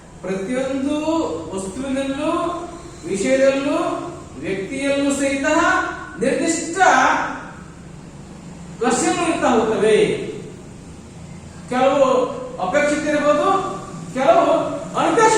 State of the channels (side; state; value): both; identical; correlation 1.00